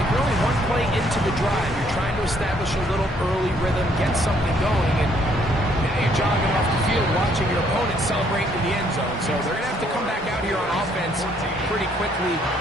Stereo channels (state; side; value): normal; both; correlation 0.67